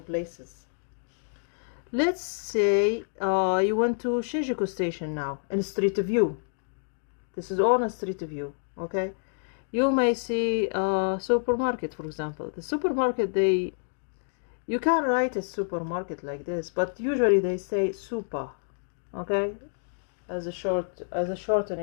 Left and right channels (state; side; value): silent; right; digital silence